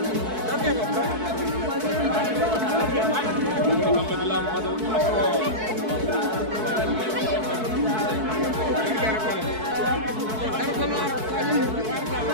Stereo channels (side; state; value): left; late; 4.6 ms